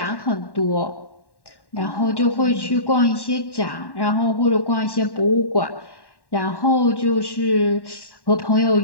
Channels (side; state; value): right; late; 1.1 ms